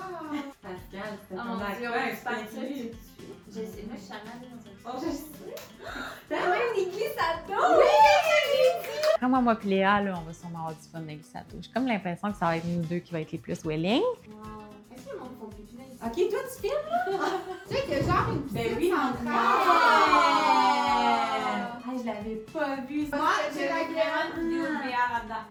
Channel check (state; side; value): identical; both; correlation 1.00